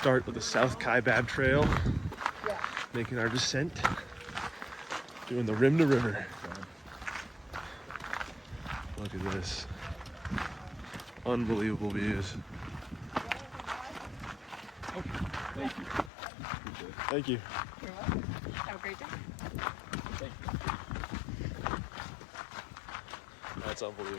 of the South Kaibab Trail, making our descent, doing the rim to river. Look at this. Unbelievable views. Thank you. Thank you. You're welcome. Have a great day. Thank you. That's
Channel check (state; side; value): drops out; right; at 16.1 s